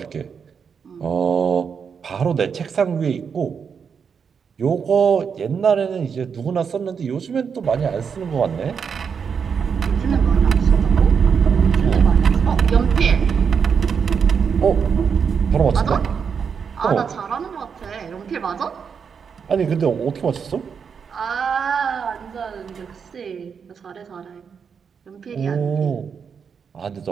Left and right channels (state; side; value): quieter; left; 6.5 dB